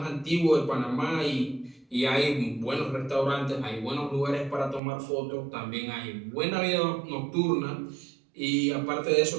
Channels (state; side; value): drops out; left; at 4.8 s